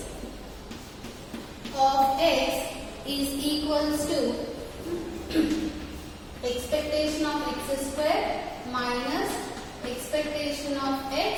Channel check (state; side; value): identical; both; correlation 1.00